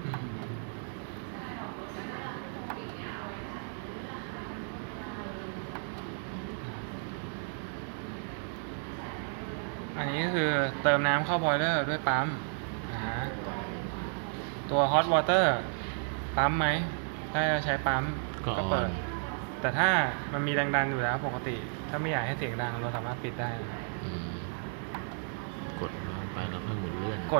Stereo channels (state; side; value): silent; left; 56 dB below the other